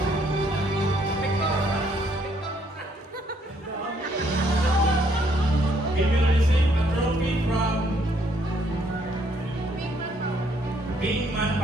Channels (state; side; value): normal; both; correlation 0.68